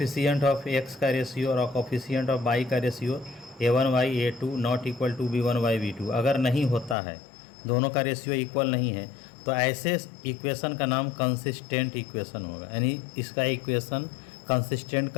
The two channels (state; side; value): drops out; right; at 7.0 s